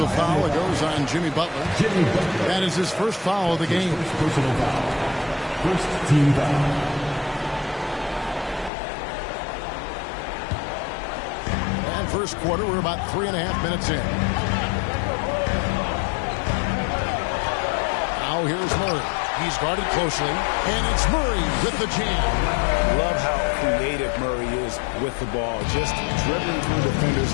foul that goes on Jimmy Butler. That is his first foul of the game. First team foul. And first quarter, we're about 3.5 minutes in. Now here's Murray. He's guarded closely, and it's Murray with the jam. Love how creative Murray is with the ball, just dribbling through defenders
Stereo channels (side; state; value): right; drops out; at 8.7 s